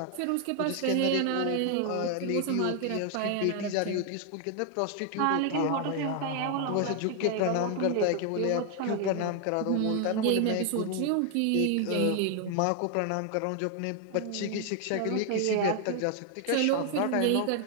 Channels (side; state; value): both; different; correlation 0.00